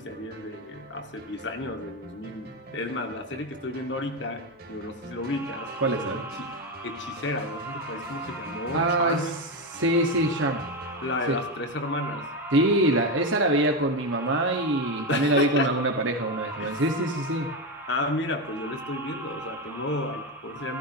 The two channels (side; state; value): both; normal; correlation 0.13